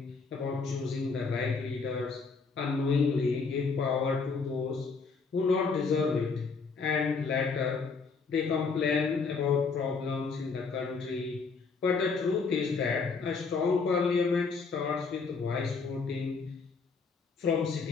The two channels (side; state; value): right; quieter; 4.8 dB